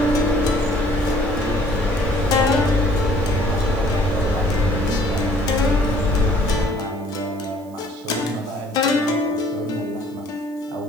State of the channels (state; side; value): noise; right; hiss, 29 dB below the sound